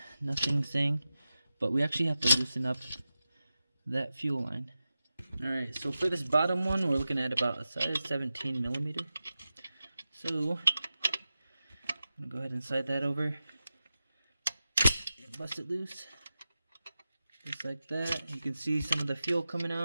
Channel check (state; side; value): inverted; both; correlation -0.93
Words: nothing saying, but we actually have to loosen up that fuel line. Alright, so for this bottom one, we're looking at about a size 17 millimeter. So I'm gonna go ahead and slide that over and bust it loose. Just like that. You can see some of the fuel coming